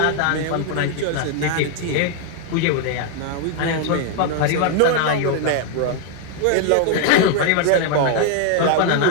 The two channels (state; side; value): different; both; correlation 0.00